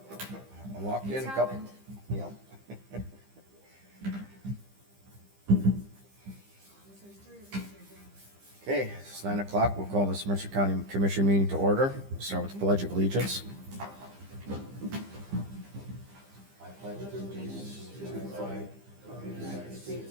I walked in It's a couple, happened. yeah. Okay, it's 9 o'clock. We'll call this Mercer County Commission meeting to order. We'll start with the Pledge of Allegiance. I pledge allegiance to the flag of the United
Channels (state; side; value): late; left; 15 ms